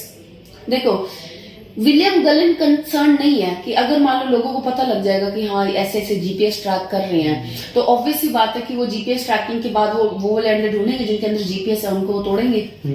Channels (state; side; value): identical; both; correlation 1.00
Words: देखो विलियम गलन कंसर्न नहीं है कि अगर मान लो लोगों को पता लग जाएगा कि हाँ ऐसे ऐसे जीपीएस ट्रैक कर रहे हैं, तो ऑब्वियस सी बात है कि वो जीपीएस ट्रैकिंग के बाद वो वाले अंडे ढूंढेंगे जिनके अंदर जीपीएस है, उनको वो तोड़ेंगे,